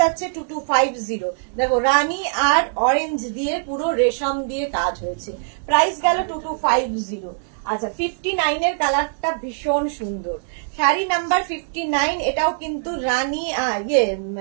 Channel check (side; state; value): left; silent; digital silence